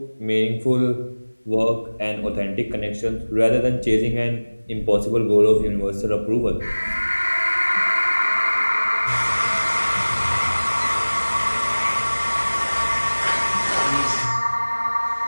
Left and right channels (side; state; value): both; inverted; correlation -1.00